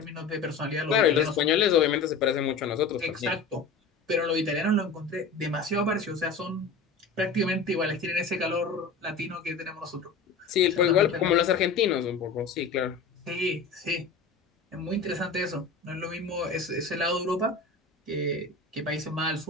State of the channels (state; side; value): quieter; right; 4.6 dB